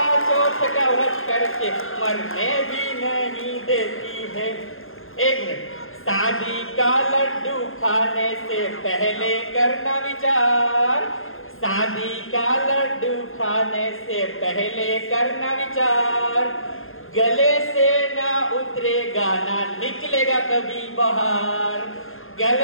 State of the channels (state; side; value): late; right; 0.60 ms